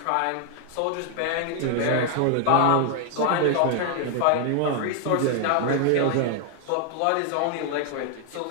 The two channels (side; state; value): both; different; correlation 0.00